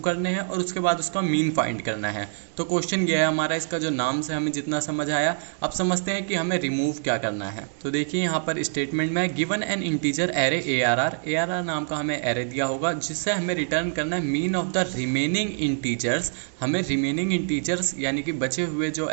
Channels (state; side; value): silent; left; digital silence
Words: करने हैं और उसके बाद उसका मीन फाइंड करना है। तो क्वेश्चन ये है हमारा, इसका जो नाम से हमें जितना समझ आया, अब समझते हैं कि हमें रिमूव क्या करना है। तो देखिए यहाँ पर स्टेटमेंट में given an integer array ARR नाम का हमें एरे दिया होगा जिससे हमें रिटर्न करना है mean of the remaining integers. हमें रिमेनिंग इंटीजर्स यानी कि बचे हुए जो